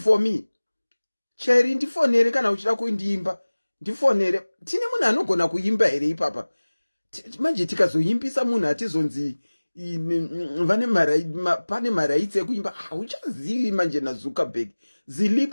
me. Cherry, ndifonere kana uchida kuimba. Ndifonere. Tine munhu anogona kuimba here ipapa. Manje tikazoimbisa munhu atizonzi pane maraitsi ekuimba. Uchazivi manje naZuckerberg.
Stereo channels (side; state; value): both; inverted; correlation -1.00